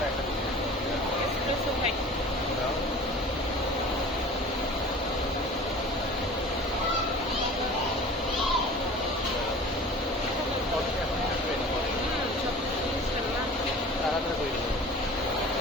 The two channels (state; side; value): normal; both; correlation 0.42